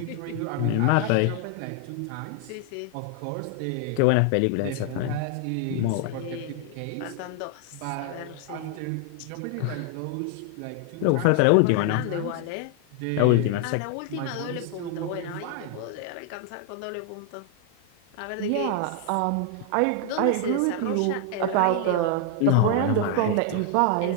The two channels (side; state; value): both; different; correlation 0.00